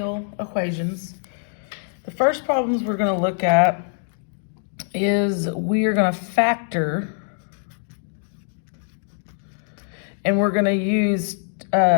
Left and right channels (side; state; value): right; silent; digital silence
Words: equations. The first problems we're going to look at is we are going to factor, and we're going to use